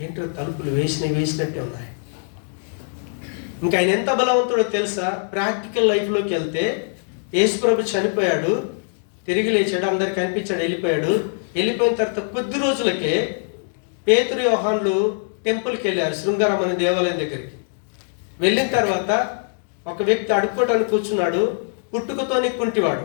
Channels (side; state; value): right; silent; digital silence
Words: ఏంటో తలుపులు వేసినట్టే ఉన్నాయి. ఇంకా ఆయన ఎంత బలవంతుడో తెలుసా? ప్రాక్టికల్ లైఫ్లోకి వెళ్తే యేసు ప్రభు చనిపోయాడు, తిరిగి లేచాడు, అందరికి కనిపించాడు, వెళ్ళిపోయిన తర్వాత కొద్ది రోజులకే పేతురు యోహాన్లు టెంపుల్కి వెళ్ళారు, శృంగారం అనే దేవాలయం దగ్గరికి. వెళ్ళిన తర్వాత ఒక వ్యక్తి అడుక్కోవటానికి కూర్చున్నాడు, పుట్టుకతోని కుంటివాడు.